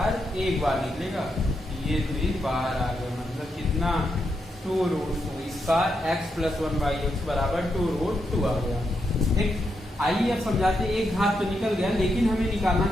एक बार निकलेगा, ये 2 बाहर आ गया, मतलब कितना 2√2, इसका x + 1/x = 2√2 आ गया। ठीक, आइए अब समझाते, एक घात तो निकल गया, लेकिन हमें निकालना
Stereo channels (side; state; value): both; normal; correlation 0.82